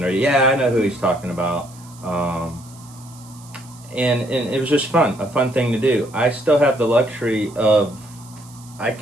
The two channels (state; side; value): noise; right; hiss, 23 dB below the sound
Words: or I know who he's talking about. And it was just a fun thing to do. I still have the luxury of I